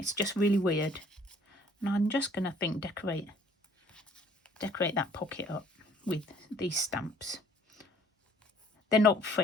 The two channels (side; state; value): both; normal; correlation 0.57